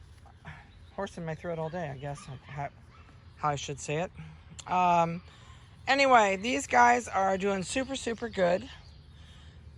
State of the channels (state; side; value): identical; both; correlation 1.00